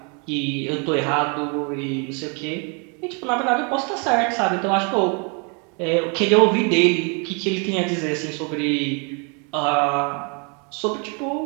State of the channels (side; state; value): left; quieter; 35.2 dB